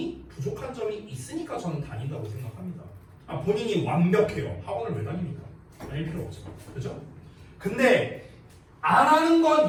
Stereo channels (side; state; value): both; identical; correlation 1.00